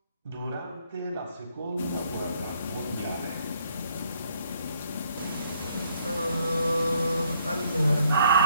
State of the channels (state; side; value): inverted; both; correlation -0.68